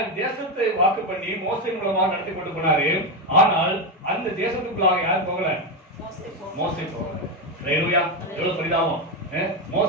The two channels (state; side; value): normal; both; correlation 0.09